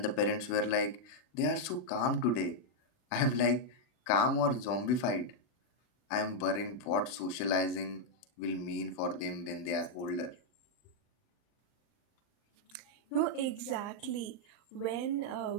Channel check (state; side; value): late; right; 40 ms